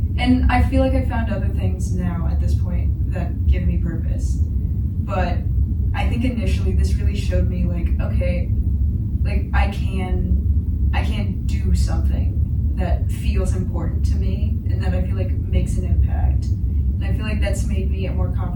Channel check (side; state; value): both; identical; correlation 1.00